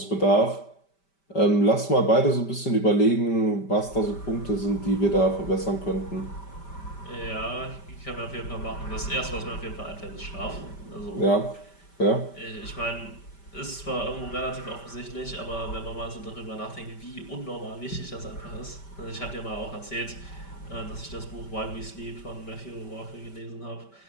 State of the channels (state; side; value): late; right; 5.1 ms